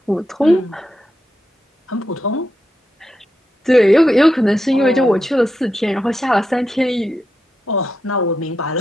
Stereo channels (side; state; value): both; normal; correlation 0.86